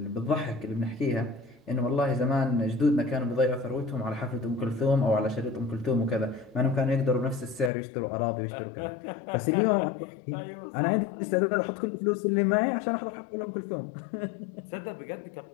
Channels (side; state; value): right; drops out; at 7.7 s